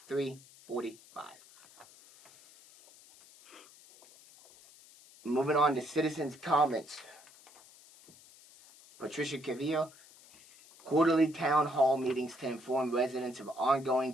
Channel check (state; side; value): noise; left; hiss, 23 dB below the sound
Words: Moving on to citizens' comments. Patricia Cavillo, quarterly town hall meetings to inform residents of ongoing